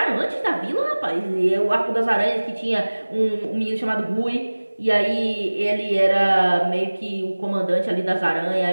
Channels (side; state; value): both; inverted; correlation -1.00